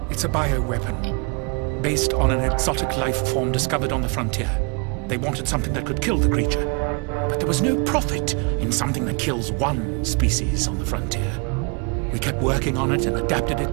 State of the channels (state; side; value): quieter; left; 32.5 dB